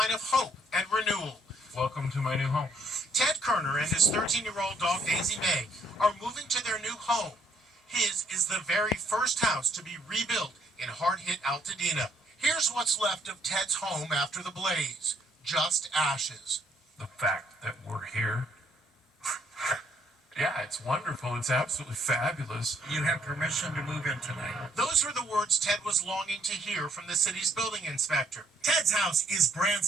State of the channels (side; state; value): both; normal; correlation 0.68